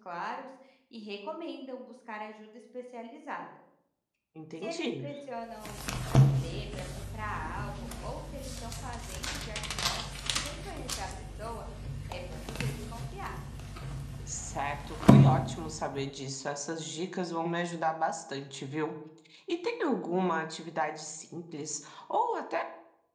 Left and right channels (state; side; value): identical; both; correlation 1.00